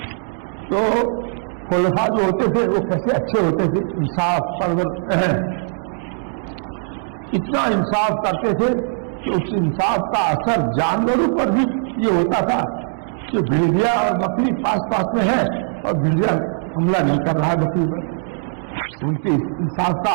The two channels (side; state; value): left; silent; digital silence